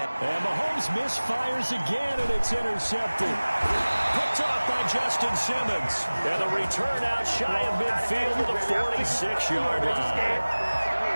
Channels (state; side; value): inverted; both; correlation -1.00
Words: And Mahomes misfires again, and it's intercepted. Picked off by Justin Simmons. And the return out shy of midfield to the 46-yard line.